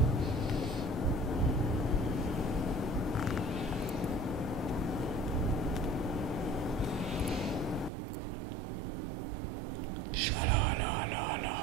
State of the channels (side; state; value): left; drops out; at 7.9 s